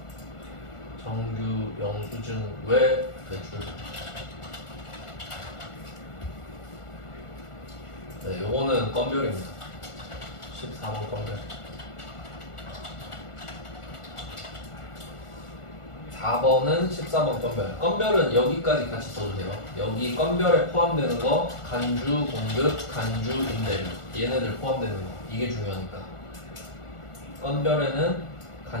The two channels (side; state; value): right; late; 1.4 ms